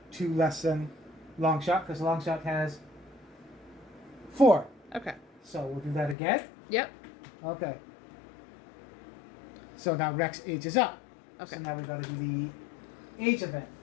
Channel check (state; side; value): drops out; right; at 6.2 s